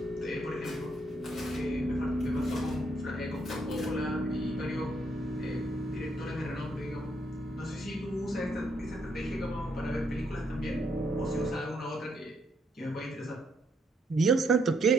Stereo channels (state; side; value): normal; both; correlation 0.73